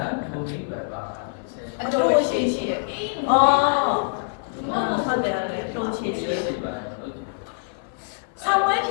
အတိုးရှိရှိအော်ဟုတ်တယ်လေတိုးရှိရှိဆောင်းဝဲဖြ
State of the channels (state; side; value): silent; right; 55 dB below the other